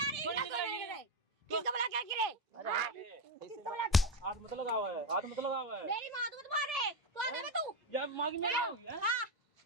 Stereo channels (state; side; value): normal; both; correlation 0.11